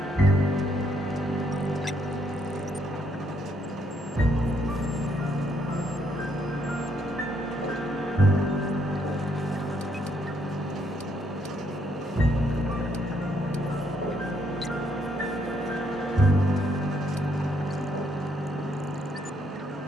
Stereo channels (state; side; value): normal; both; correlation 0.73